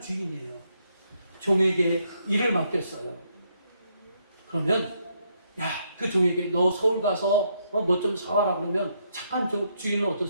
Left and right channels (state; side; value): inverted; both; correlation -0.75